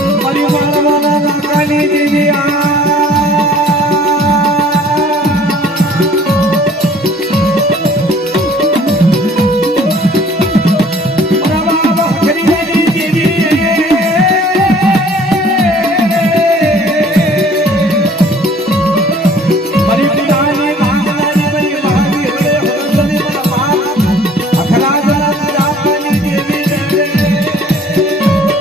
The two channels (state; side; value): normal; both; correlation 0.53